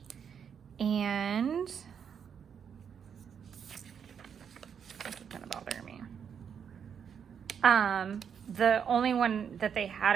And this is gonna bother me. The only one that they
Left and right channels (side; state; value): left; quieter; 7.5 dB